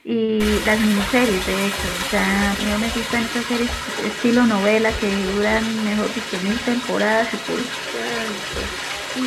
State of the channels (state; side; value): identical; both; correlation 1.00